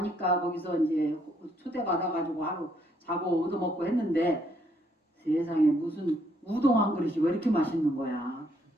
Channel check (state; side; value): normal; both; correlation 0.70